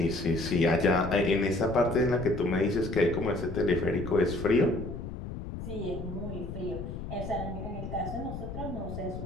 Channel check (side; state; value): left; noise; rumble, 8 dB below the sound